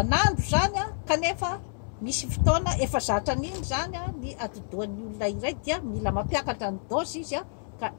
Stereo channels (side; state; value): right; silent; 59 dB below the other